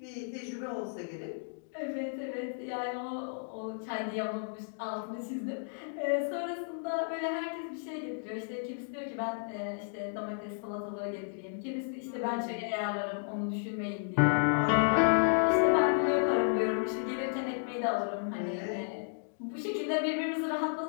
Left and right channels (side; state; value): right; silent; digital silence